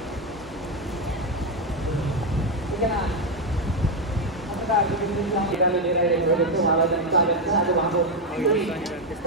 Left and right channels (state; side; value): normal; both; correlation 0.05